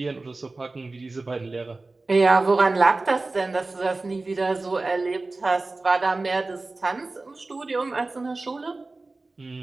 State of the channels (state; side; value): quieter; left; 3.3 dB